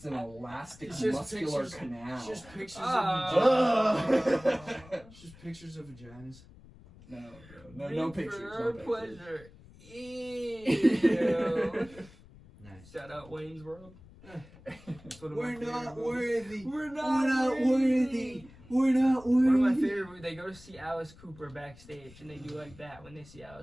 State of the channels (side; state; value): left; noise; rumble, 22 dB below the sound